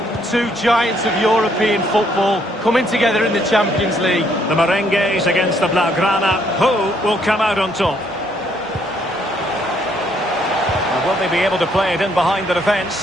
Two giants of European football coming together in the Champions League. The Merengues against the Blaugrana. Who will come out on top? And will they be able to play it in behind the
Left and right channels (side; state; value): both; normal; correlation 0.69